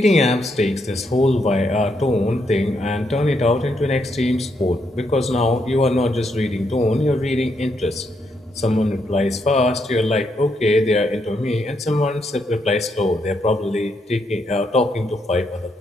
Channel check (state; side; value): normal; both; correlation 0.77